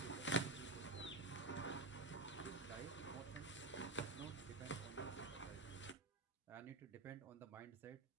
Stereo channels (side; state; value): left; quieter; 3.2 dB